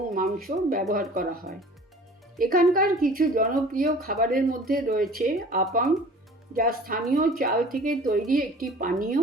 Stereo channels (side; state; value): both; normal; correlation 0.46